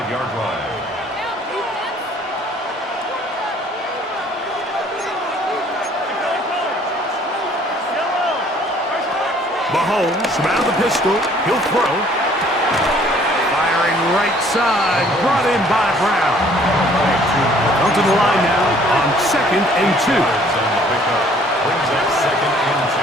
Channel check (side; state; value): both; normal; correlation 0.58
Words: line. Mahomes from out of the pistol. He'll throw. Firing right side. Brought in by Brown. Come to the line now on second and 2. Brings up second and